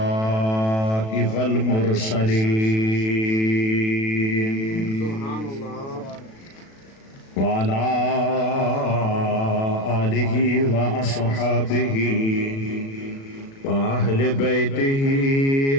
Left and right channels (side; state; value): right; late; 36 ms